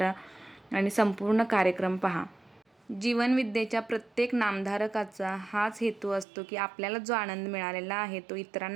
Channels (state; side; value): drops out; left; at 6.2 s